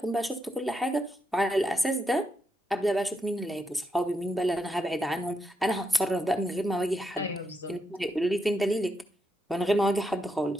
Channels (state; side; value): normal; both; correlation 0.82